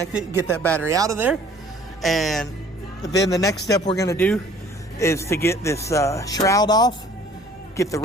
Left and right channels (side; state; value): both; normal; correlation 0.53